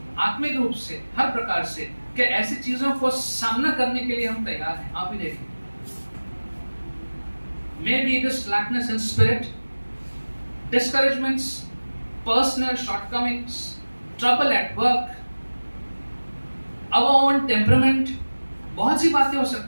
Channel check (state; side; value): inverted; both; correlation -1.00